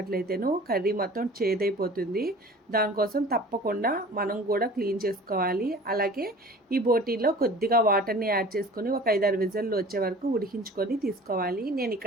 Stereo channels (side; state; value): both; normal; correlation 0.44